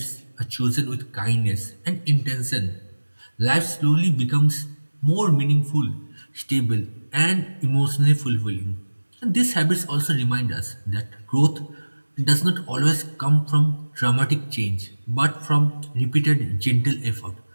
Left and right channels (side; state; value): both; inverted; correlation -1.00